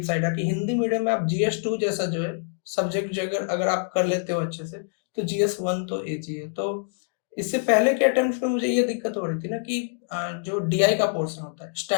साइड है कि हिंदी मीडियम में आप जीएस 2 जैसा जो है सब्जेक्ट जो अगर अगर आप कर लेते हो अच्छे से, तो जीएस 1 तो ईज़ी है। तो इससे पहले के अटेम्प्ट्स में मुझे ये दिक्कत हो रही थी ना कि जो डीआई का पोर्शन होता है,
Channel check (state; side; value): silent; right; digital silence